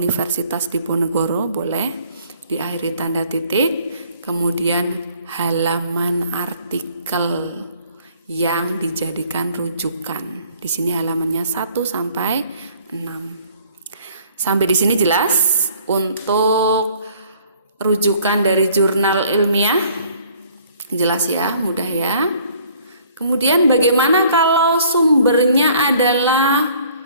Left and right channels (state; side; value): inverted; both; correlation -0.58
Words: Diponegoro boleh diakhiri tanda titik. Kemudian halaman artikel yang dijadikan rujukan. Di sini halamannya 1 sampai 6. Sampai di sini jelas untuk rujukan dari jurnal ilmiah? Jelas ya, mudah ya. Kemudian bagaimana kalau sumbernya adalah